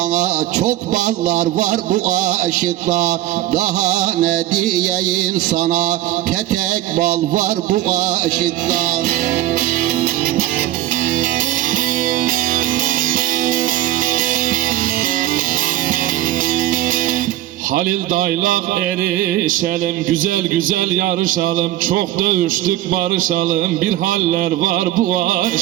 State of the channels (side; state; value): left; quieter; 14.3 dB